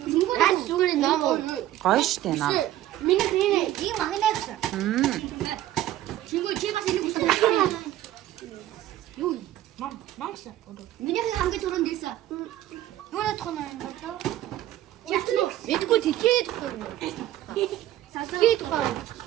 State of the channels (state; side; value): quieter; left; 13.6 dB